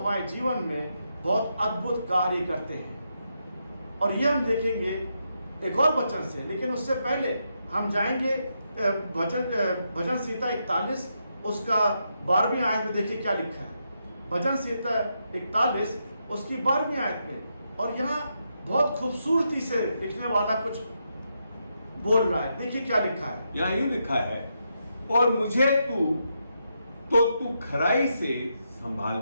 जीवन में बहुत अद्भुत कार्य करते हैं। और ये हम देखेंगे एक और वचन से, लेकिन उससे पहले हम जाएंगे भजन संहिता 41 उसका 12वीं आयत में। देखिए क्या लिखा है भजन संहिता 41 उसकी 12वीं आयत में, और यहाँ बहुत खूबसूरती से लिखने वाला कुछ बोल रहा है। देखिए क्या लिखा है, यहाँ यूं लिखा है, और मुझे तू खराई से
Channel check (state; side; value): inverted; both; correlation -0.82